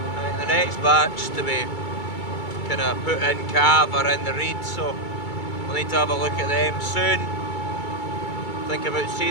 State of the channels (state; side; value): late; right; 2.3 ms